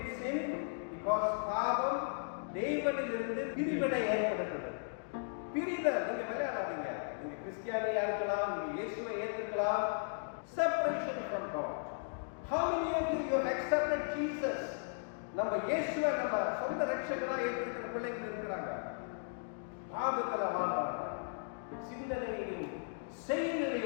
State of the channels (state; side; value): silent; right; digital silence